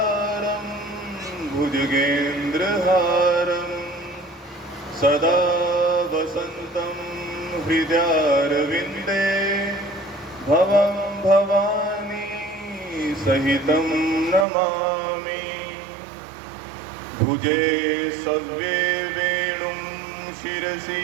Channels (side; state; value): left; drops out; at 14.5 s